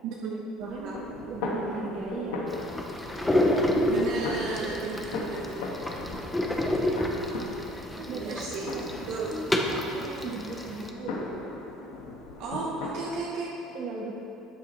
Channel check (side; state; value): both; normal; correlation 0.59